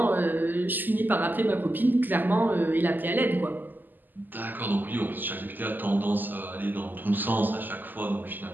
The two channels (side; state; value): left; late; 0.088 ms